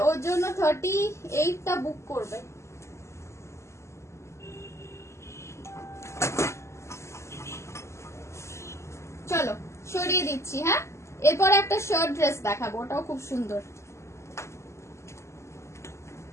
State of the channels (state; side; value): late; right; 0.13 ms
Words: ওর জন্য 38টা বুক করবে। চলো সরিয়ে দিচ্ছি। হ্যাঁ, এরপর একটা শার্ট ড্রেস দেখাবো, ওটাও খুব সুন্দর।